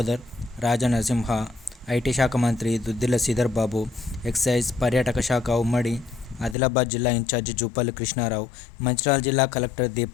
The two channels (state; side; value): drops out; right; at 6.6 s